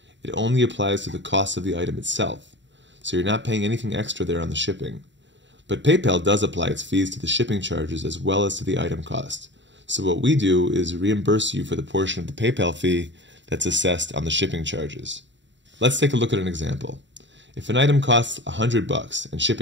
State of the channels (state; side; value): late; left; 0.53 ms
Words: It only applies to the cost of the item itself, so you're not paying anything extra there on the shipping. But PayPal does apply its fees to the shipping charges as well as to the item cost. So what we do is reimburse you for the portion of the PayPal fee that's assessed on the shipping charges. Let's take a look at an example. If an item costs $100 and